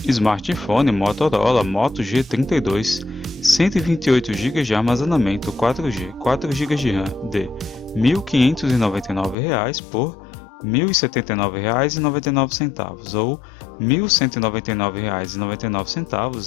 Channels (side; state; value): right; drops out; at 9.3 s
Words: Smartphone Motorola Moto G32, 128 GB de armazenamento 4G, 4 GB de RAM, de R$ 1.599 por R$ 1.079,99, ou R$